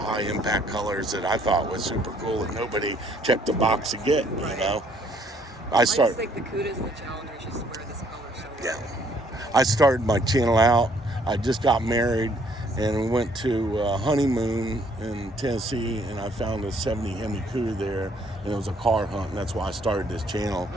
impact colors that I thought was super cool that nobody checked the box to get, you know. I just think the Cudas and the Challengers just wear this color so well. Yeah. I started my channel out. I just got married and we went to a honeymoon in Tennessee, and I found a 70 Hemi Cuda there, and it was a car hunt, and that's why I started this channel.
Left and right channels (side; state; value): both; normal; correlation 0.64